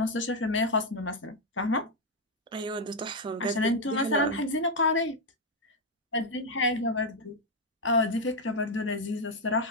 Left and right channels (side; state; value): both; normal; correlation 0.02